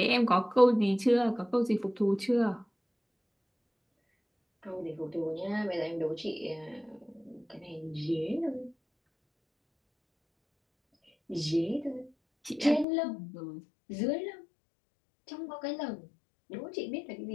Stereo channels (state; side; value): drops out; right; at 12.9 s